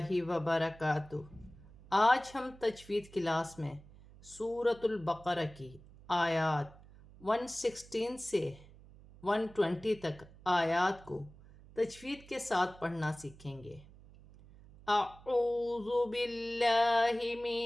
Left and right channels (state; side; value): noise; right; hum, 21 dB below the sound